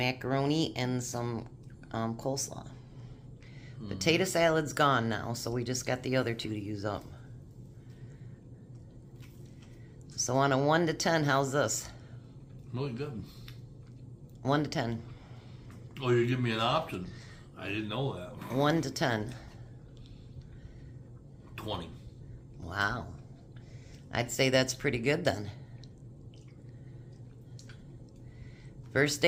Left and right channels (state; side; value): identical; both; correlation 1.00